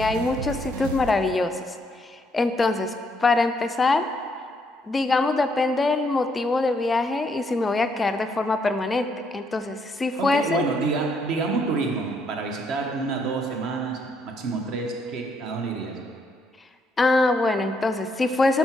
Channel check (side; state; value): both; normal; correlation 0.73